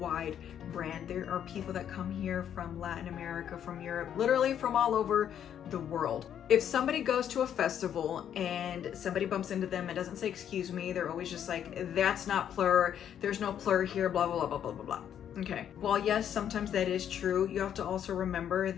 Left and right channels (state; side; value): quieter; right; 9.5 dB